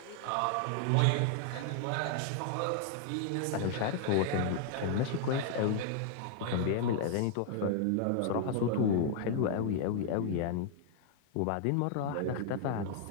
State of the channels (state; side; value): different; both; correlation 0.00